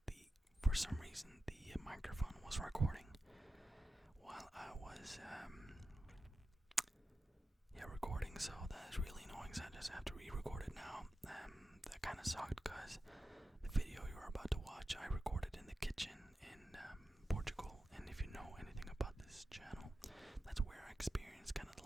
for some reason, the microphone was recording while I was, recording, so that is really annoying, so I just have to re-record it now. That kind of sucked, because the video you're about to watch, I recorded in the kitchen in Portugal, and if you know anything about this channel, that's where I experienced kind of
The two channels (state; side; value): normal; both; correlation 0.93